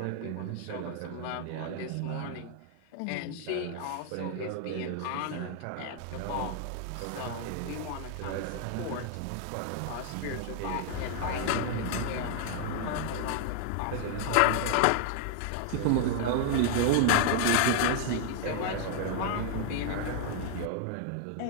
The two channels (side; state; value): both; different; correlation 0.00